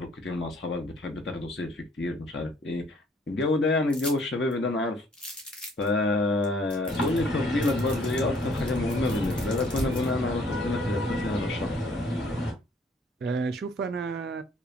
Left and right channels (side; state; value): both; normal; correlation 0.61